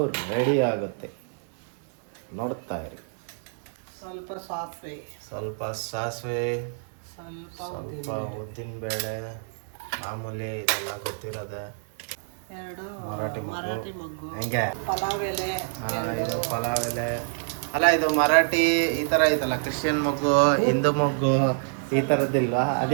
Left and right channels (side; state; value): left; silent; digital silence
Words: ರೆಡಿ ಆಗುತ್ತೆ, ನೋಡ್ತಾ ಇರಿ. ಸ್ವಲ್ಪ ಸಾಸಿವೆ, ಸ್ವಲ್ಪ ಸಾಸಿವೆ, ಸ್ವಲ್ಪ ಸ್ವಲ್ಪ ಉದ್ದಿನಬೇಳೆ, ಮಾಮೂಲಿ ಇದೆಲ್ಲ ಗೊತ್ತಿರೋದೆ. 2 ಮರಾಠಿ ಮರಾಠಿ ಮೊಗ್ಗು, ಹೆಂಗೆ ಪಲಾವ್ ಎಲೆ, ಇದು ಪಲಾವ್ ಎಲೆ ಅಲ್ಲ, ಇದು ಮರಾಠಿ ಈ ಥರ ಐತಲ್ಲ, ಕ್ರಿಶ್ಚಿಯನ್ ಮೊಗ್ಗು, ಹಿಂದೂ ಮೊಗ್ಗು ಈ ಥರದ್ದಿಲ್ವಾ?